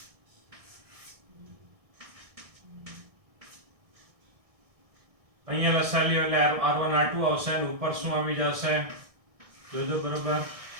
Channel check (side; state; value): left; late; 1.6 ms